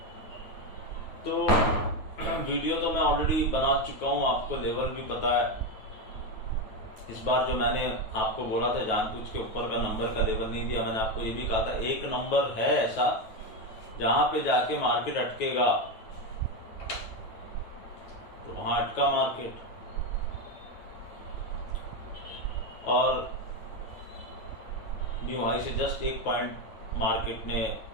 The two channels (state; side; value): late; right; 9.2 ms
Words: तो वीडियो तो मैं ऑलरेडी बना चुका हूँ, आपको लेवल भी पता है। इस बार जो मैंने आपको बोला था जानबूझ के ऊपर का नंबर का लेवल नहीं दिया। मैंने आपको ये भी कहा था एक नंबर है ऐसा जहां पे जाके मार्केट अटकेगा, तो वहां अटका मार्केट। और न्यू हाई से जस्ट 1 पॉइंट मार्केट ने